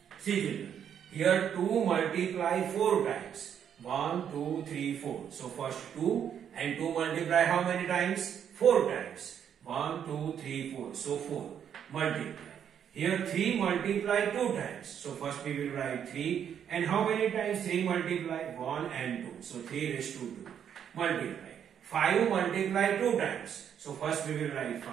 See children, here 2 multiply 4 times. 1, 2, 3, 4. So first 2 and 2 multiply how many times? 4 times. 1, 2, 3, 4. So 4 multiply. Here 3 multiply 2 times. So first we will write 3 and how many times 3 multiply? 1 and 2. So 3 raised to 2 multiply. 5 multiply 2 times. So first we will write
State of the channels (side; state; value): left; quieter; 8.7 dB